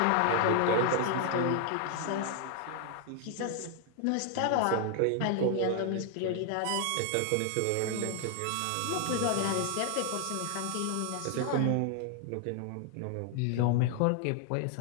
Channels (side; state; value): both; different; correlation 0.00